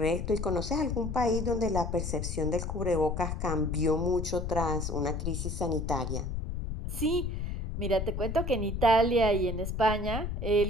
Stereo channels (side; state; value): left; noise; rumble, 4 dB below the sound